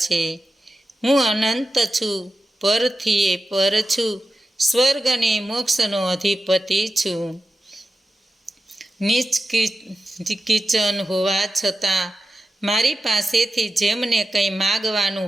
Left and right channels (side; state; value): both; normal; correlation 0.91